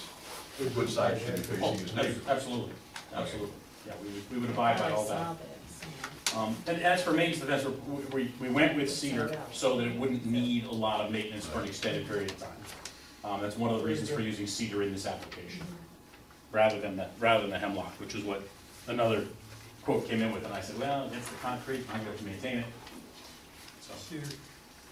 the good side should be Oh, facing his neighbor. absolutely, absolutely, yeah, we would abide by all I saw that. that. And as for maintenance of the fence, we went with cedar so that it wouldn't need a lot of maintenance for an extended period of time. That's one of the reasons for using cedar in this application, rather than the hemlock, which is what another quote came in with, and I said, well, it's the concrete, I'm going to maintain it. So, Cedar.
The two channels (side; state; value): both; identical; correlation 1.00